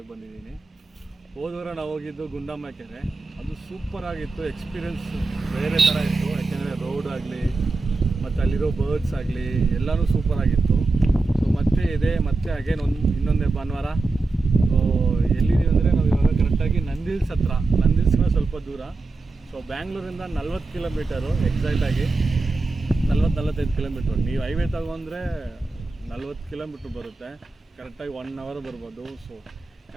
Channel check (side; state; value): left; quieter; 3.5 dB